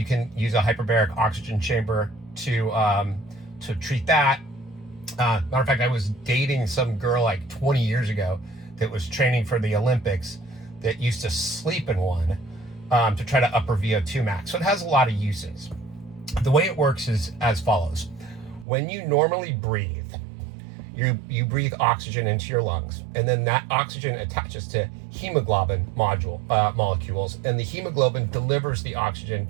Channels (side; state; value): left; drops out; at 18.7 s